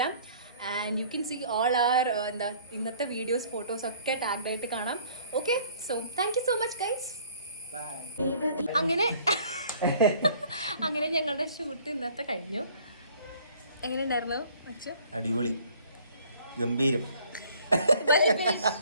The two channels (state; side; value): inverted; both; correlation -0.56